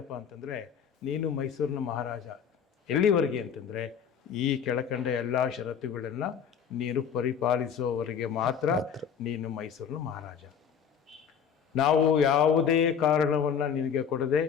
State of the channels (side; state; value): right; quieter; 7.5 dB